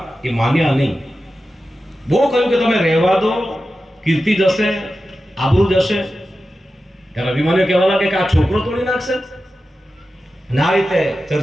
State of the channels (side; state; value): both; normal; correlation 0.92